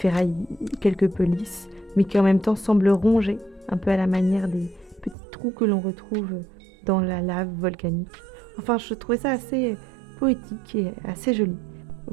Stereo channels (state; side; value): drops out; left; at 5.2 s